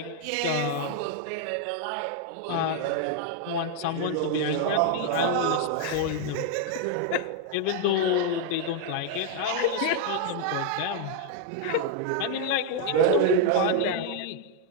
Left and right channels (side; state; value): both; different; correlation 0.00